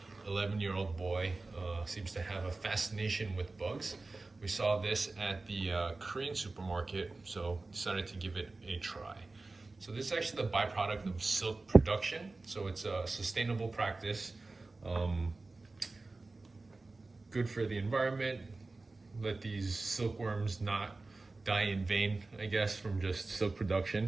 11-year-old boy, seems to have a fascination with bugs. We saw this at the Korean supermarket, so decided to give it a try. So this is actually the byproduct of silk production, so it's a sustainable practice. Good for the environment. Let these silkworms not die in vain, I guess, from just silk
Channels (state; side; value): quieter; left; 3.4 dB